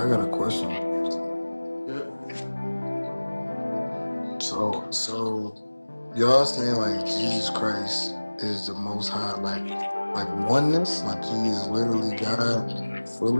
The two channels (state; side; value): inverted; both; correlation -1.00